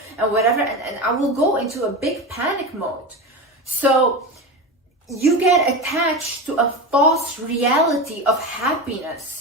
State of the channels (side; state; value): both; normal; correlation 0.22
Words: and whatever. And I will go into a big panic mode. So you get attached to a false reality of